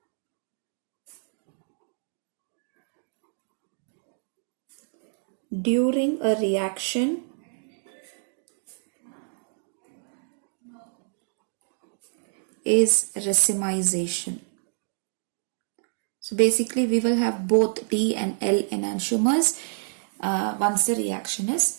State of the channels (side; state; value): left; silent; digital silence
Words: during a reaction is racemization. So basically we will have both D and L enantiomers once the reaction